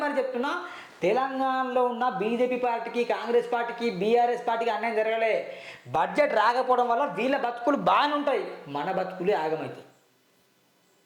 చెప్తున్నా, తెలంగాణలో ఉన్న బీజేపీ పార్టీకి, కాంగ్రెస్ పార్టీకి, బీఆర్ఎస్ పార్టీకి అన్యాయం జరగలే. బడ్జెట్ రాకపోవడం వల్ల వీళ్ళ బతుకులు బాగానే ఉంటాయి, మన బతుకులే ఆగమవుతాయి.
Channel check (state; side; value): identical; both; correlation 1.00